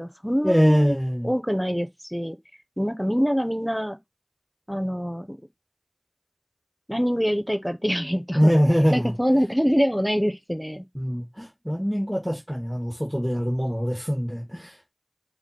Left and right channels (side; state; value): both; identical; correlation 1.00